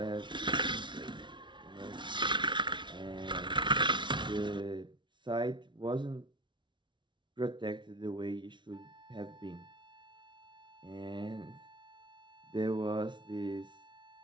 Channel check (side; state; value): left; late; 0.23 ms